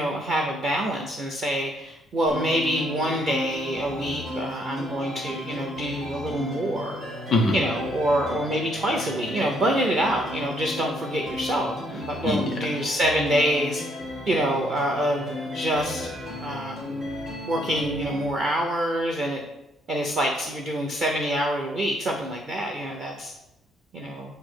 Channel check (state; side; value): normal; both; correlation 0.69